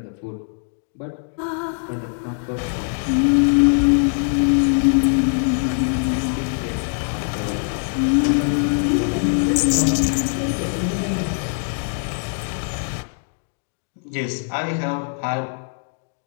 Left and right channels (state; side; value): silent; right; 64 dB below the other